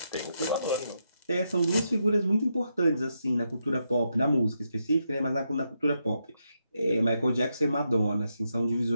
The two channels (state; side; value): inverted; both; correlation -0.82